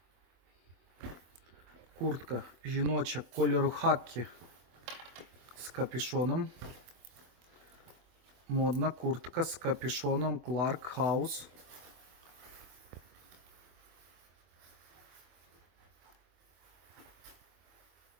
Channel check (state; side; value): late; left; 24 ms